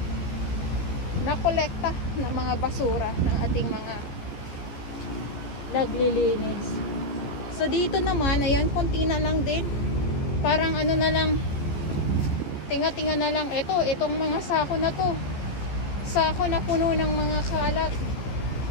nakolekta ng mga basura ng ating mga naglilinis. So dito naman, ayan, konti na lang din. Parang na lang, tinga-tinga na lang. Itong mga sako na to. Sako na puno ng mga kalat.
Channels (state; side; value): late; right; 15 ms